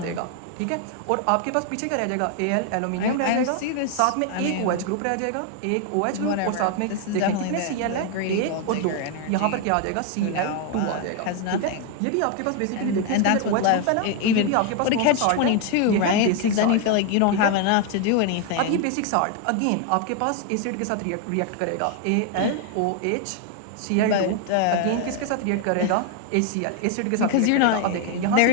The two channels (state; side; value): different; both; correlation 0.00